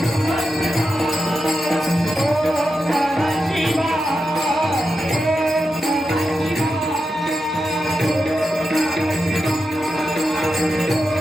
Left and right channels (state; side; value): normal; both; correlation 0.89